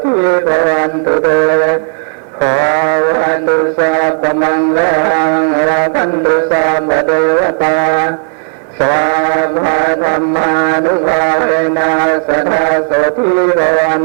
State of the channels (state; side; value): silent; left; 72 dB below the other